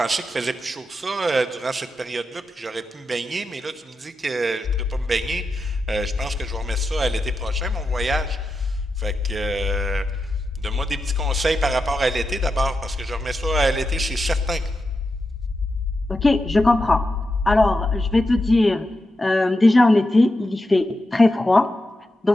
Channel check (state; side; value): normal; both; correlation 0.88